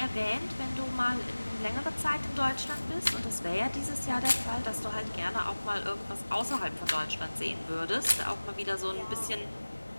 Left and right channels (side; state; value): both; inverted; correlation -1.00